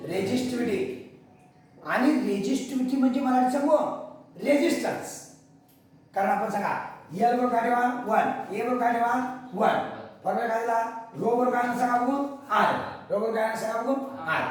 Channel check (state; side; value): identical; both; correlation 1.00